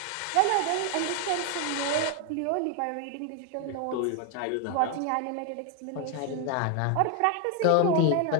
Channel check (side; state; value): both; different; correlation 0.01